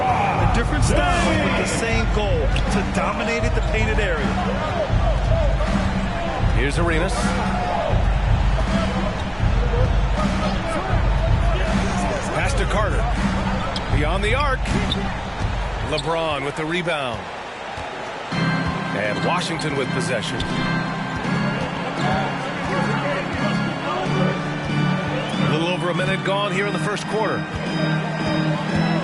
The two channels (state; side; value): identical; both; correlation 1.00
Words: A different style with the same goal, to dominate at the painted area. Here's Arenas. Pass to Carter. Beyond the arc. LeBron with the rebound. And Washington with possession. A little over a minute gone here in the first quarter.